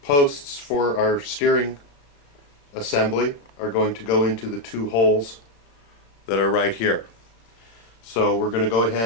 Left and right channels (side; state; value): right; late; 35 ms